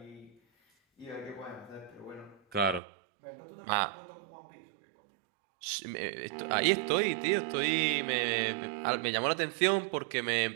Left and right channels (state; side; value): drops out; left; at 2.8 s